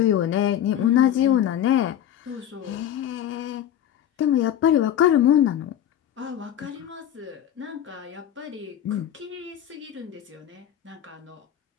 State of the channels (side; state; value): right; quieter; 10.6 dB